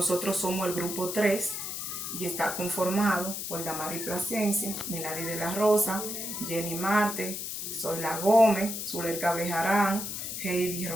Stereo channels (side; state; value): left; noise; hiss, 5 dB below the sound